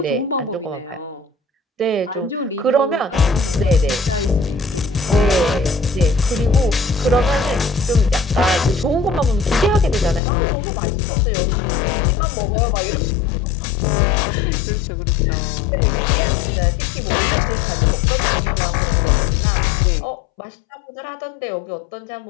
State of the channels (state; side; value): drops out; right; at 10.2 s